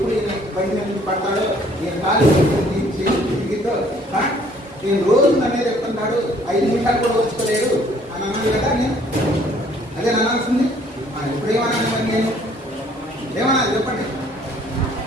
బయట నుంచి పడతాడో, నేను కాలు దిగితో నేను రోజు నన్నే చెప్తుంటాడు, 5 నిమిషాలు కూడా వచ్చుకోలేడు అని అన్నాను కదా. నేను అదే అనాల్సింది. ఇప్పుడు ఏమన్నాను మరి? నేను ఏమనాలి చెప్పండి?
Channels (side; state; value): both; normal; correlation 0.60